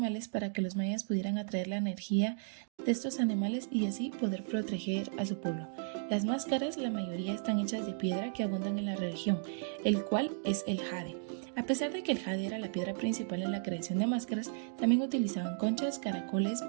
para que los mayas pudieran atraer la energía de estos animales y así poder proteger a su pueblo. Las máscaras, la mayoría están hechas de piedra que abundan en la región, el cual es el jade. A pesar de que el jade era la piedra principal en la creación de máscaras, también utilizaban conchas, caracoles,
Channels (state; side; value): silent; left; digital silence